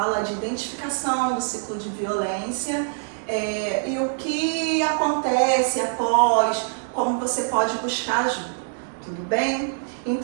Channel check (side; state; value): left; silent; digital silence